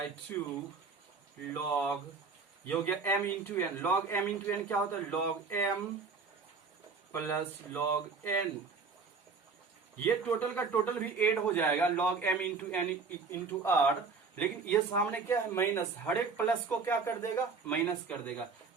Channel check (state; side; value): quieter; left; 4.8 dB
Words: log, ये हो गया m into n. Log m into n क्या होता है, log m plus log n। ये टोटल का टोटल भी एड हो जाएगा log m into n into r, लेकिन ये सामने क्या है माइनस, हर एक प्लस को क्या कर देगा, माइनस कर देगा।